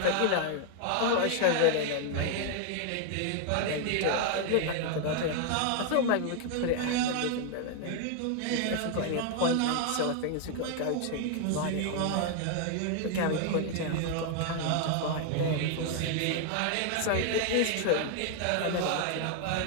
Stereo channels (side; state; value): both; different; correlation 0.00